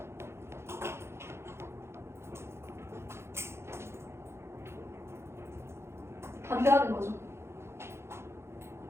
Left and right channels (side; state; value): left; late; 0.12 ms